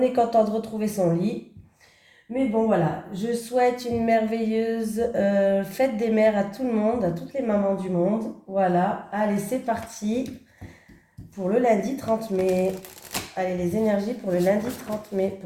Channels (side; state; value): both; identical; correlation 1.00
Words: content de retrouver son lit. Mais bon voilà, je souhaite une merveilleuse fête des mères à tout le monde, à toutes les mamans du monde. Voilà, allez c'est parti pour le lundi 30 mai. Allez, les énergies pour le lundi 30 mai,